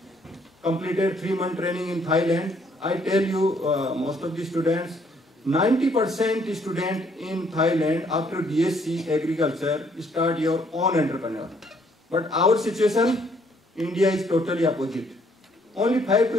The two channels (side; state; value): both; normal; correlation 0.66